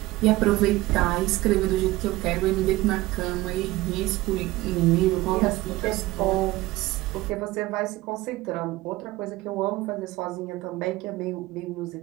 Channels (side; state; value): left; quieter; 18.6 dB